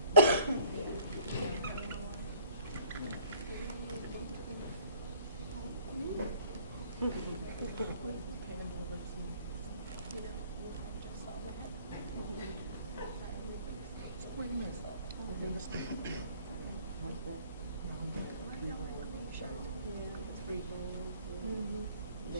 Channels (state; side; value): inverted; both; correlation -0.55